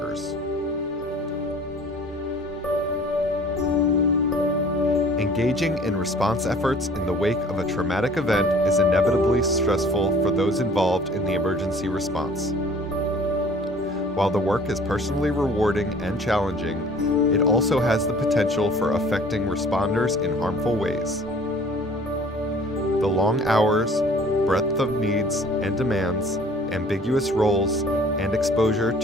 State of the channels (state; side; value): normal; both; correlation 0.50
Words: Engaging in response efforts in the wake of a traumatic event is inevitably stressful for those involved in the emergency response. While the work is personally rewarding and challenging, it also has the potential for affecting responders in harmful ways. The long hours, breadth of needs and demands, ambiguous roles, and exposure